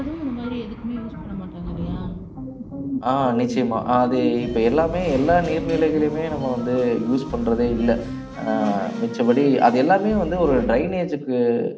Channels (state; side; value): identical; both; correlation 1.00